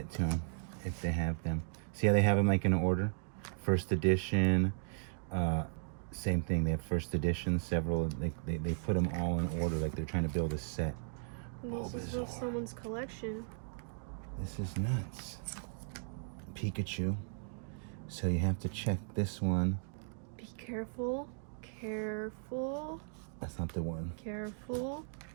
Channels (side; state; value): left; silent; digital silence